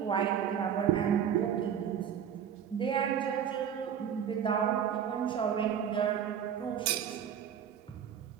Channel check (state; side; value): quieter; left; 8.7 dB